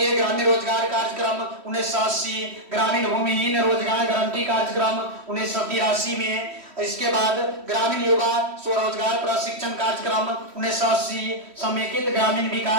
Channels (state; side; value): late; left; 3.1 ms